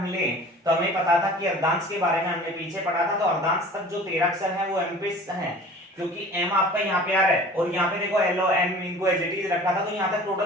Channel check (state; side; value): normal; both; correlation 0.44